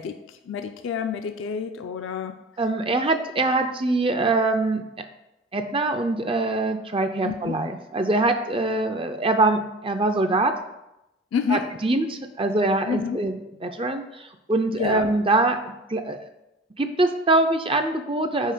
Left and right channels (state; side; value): normal; both; correlation 0.37